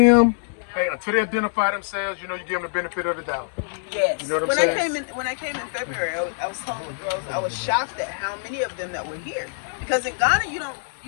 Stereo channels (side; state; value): right; silent; digital silence